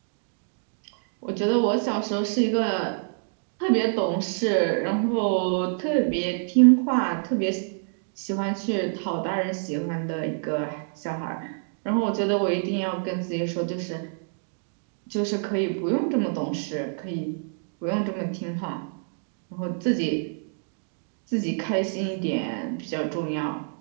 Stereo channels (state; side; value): silent; left; digital silence